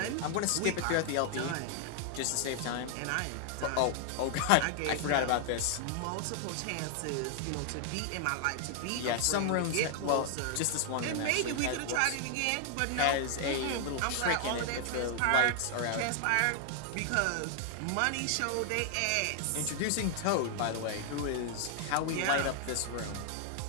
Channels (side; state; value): both; different; correlation 0.00